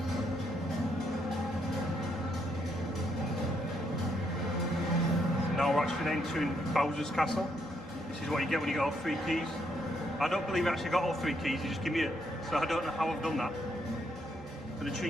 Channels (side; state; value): both; normal; correlation 0.75